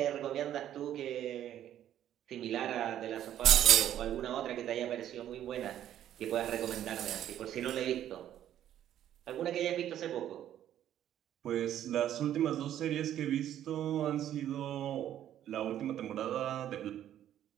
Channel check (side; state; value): left; quieter; 11.3 dB